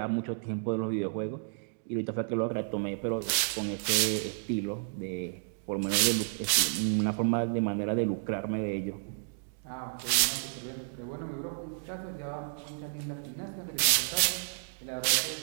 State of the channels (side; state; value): left; silent; digital silence